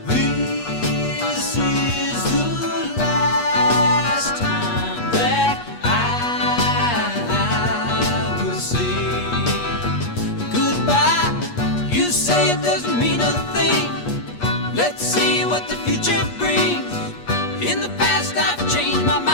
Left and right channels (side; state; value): right; late; 8.4 ms